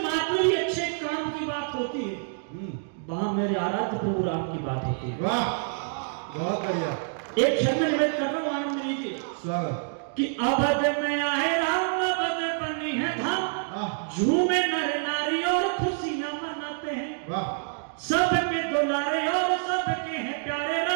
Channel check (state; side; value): silent; left; digital silence